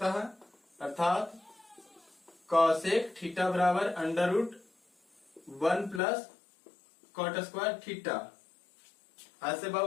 है, अर्थात कॉसेक थीटा बराबर under root 1 plus cot square theta. ऐसे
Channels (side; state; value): right; drops out; at 6.0 s